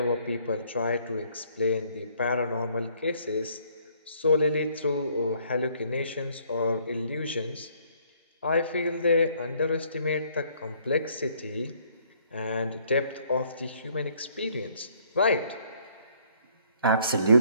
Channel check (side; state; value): both; inverted; correlation -0.63